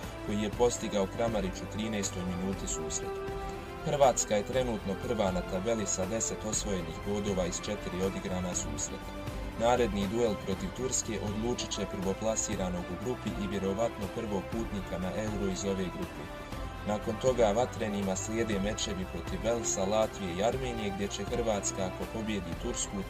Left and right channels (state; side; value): identical; both; correlation 1.00